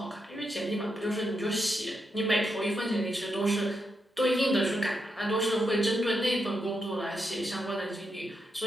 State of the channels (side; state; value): both; normal; correlation 0.84